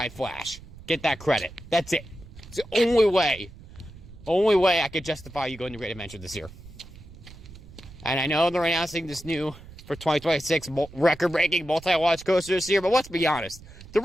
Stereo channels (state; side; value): noise; right; rumble, 18 dB below the sound